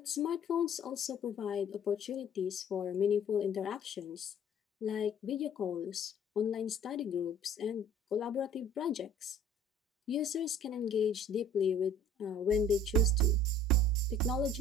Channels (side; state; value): both; normal; correlation 0.50